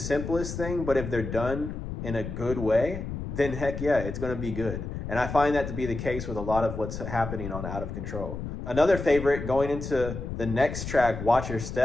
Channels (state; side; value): noise; left; rumble, 7 dB below the sound